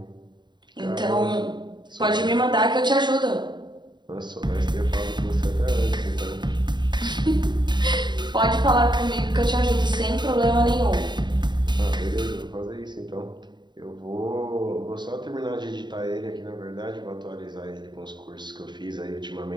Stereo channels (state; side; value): late; left; 0.22 ms